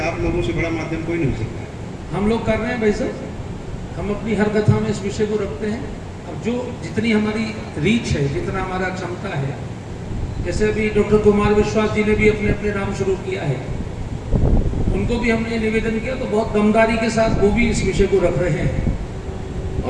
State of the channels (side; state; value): both; identical; correlation 1.00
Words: आप लोगों से बड़ा माध्यम कोई नहीं हो सकता। हम लोग कर रहे हैं भाई साहब, हम अपनी हर कथा में इस विषय को रखते हैं। अब जो जितनी हमारी रीच है, जितना हमारा क्षमता है, जैसे अभी डॉक्टर कुमार विश्वास जी ने भी अपने अपने नाम शुरू किया है, उनको भी हमने निवेदन किया तो बहुत दमदारी के साथ वो भी इस विषय को रख रहे हैं।